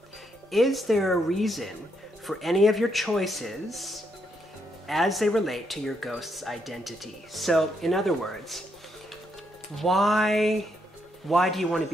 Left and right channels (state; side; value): normal; both; correlation 0.77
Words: is there a reason for any of your choices as they relate to your ghost's identity? So, in other words, why do you want to